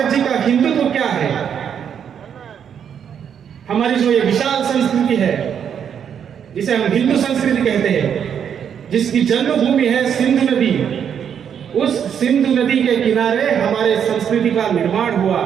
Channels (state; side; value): quieter; left; 8.2 dB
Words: जी का हिंदुत्व क्या है? हमारी जो ये विशाल संस्कृति है जिसे हम हिंदू संस्कृति कहते हैं, जिसकी जन्मभूमि है सिंधु नदी, उस सिंधु नदी के किनारे हमारे संस्कृति का निर्माण हुआ,